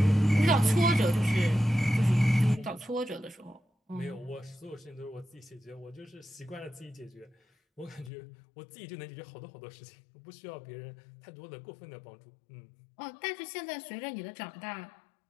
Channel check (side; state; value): right; drops out; at 8.1 s